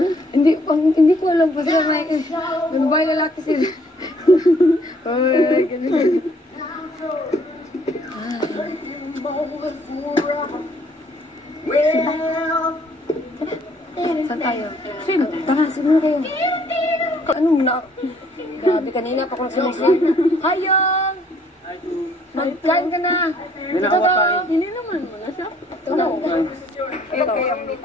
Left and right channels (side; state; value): both; normal; correlation 0.63